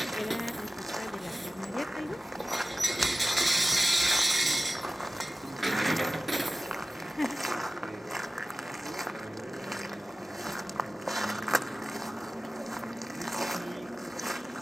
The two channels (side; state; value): both; normal; correlation 0.96